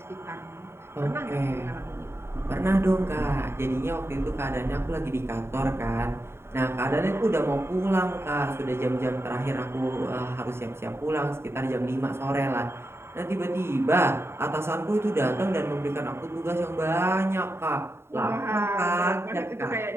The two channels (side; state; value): left; late; 0.12 ms